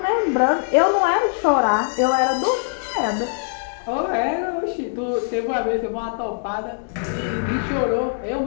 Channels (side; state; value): right; silent; digital silence